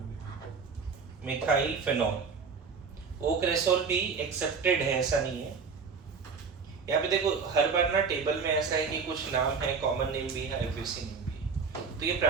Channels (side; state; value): left; quieter; 5.4 dB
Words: फेनॉल। O क्रेसोल भी एक्सेप्टेड है, ऐसा नहीं है। यहाँ पे देखो हर बार ना टेबल में ऐसा है कि कुछ नाम है, कॉमन नेम भी है, आईयूपीएसी नेम भी है, तो ये